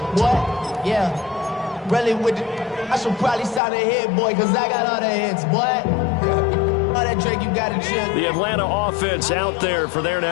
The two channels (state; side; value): drops out; right; at 3.6 s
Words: what? Yeah, really with the, I should probably sign a hit, boy, because I got all the hits, boy. All that Drake, you got to chill. The Atlanta offense out there for their